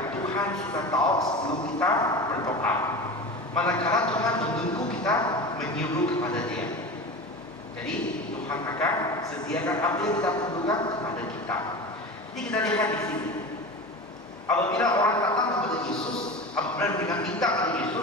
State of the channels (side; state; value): both; normal; correlation 0.30